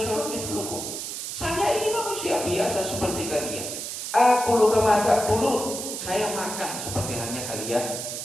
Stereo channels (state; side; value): noise; right; hiss, 6 dB below the sound